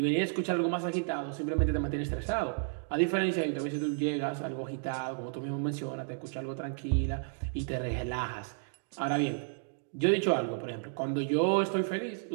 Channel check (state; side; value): silent; left; digital silence